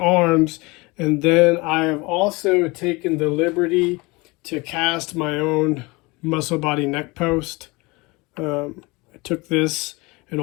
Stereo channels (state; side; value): quieter; right; 24.7 dB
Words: And then I have also taken the liberty to cast my own Muscle Body neck post. I took this, an